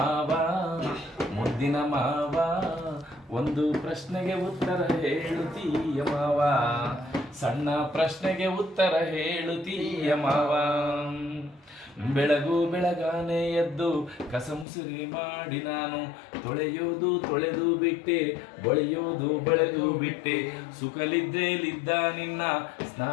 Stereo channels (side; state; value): right; drops out; at 14.7 s